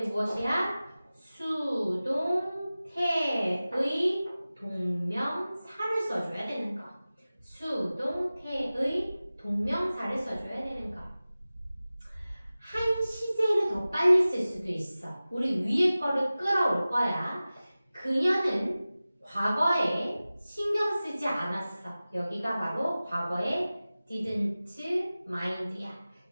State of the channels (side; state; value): both; inverted; correlation -0.97